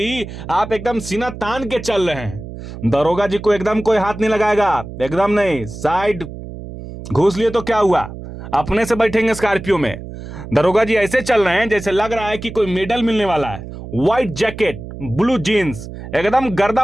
आप एकदम सीना तान के चल रहे हैं। दरोगा जी को एकदम कोई हाथ नहीं लगाएगा, एकदम नहीं। साइड घूस लिए तो क्या हुआ, अपने से बैठेंगे स्कॉर्पियो में। दरोगा जी ऐसे चल रहे हैं जैसे लग रहा है कि कोई मेडल मिलने वाला है। व्हाइट जैकेट, ब्लू जीन्स, एकदम गर्दा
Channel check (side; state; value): right; noise; hum, 12 dB below the sound